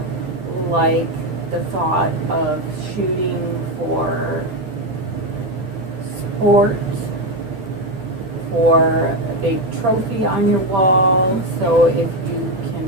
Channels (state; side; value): late; left; 11 ms